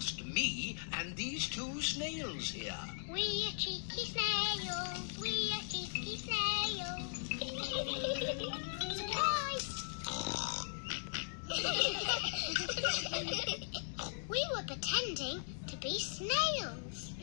me and these two snails here. We are cheeky snails. We are cheeky snails. Surprise! We were pretending to be snails.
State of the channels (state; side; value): silent; right; digital silence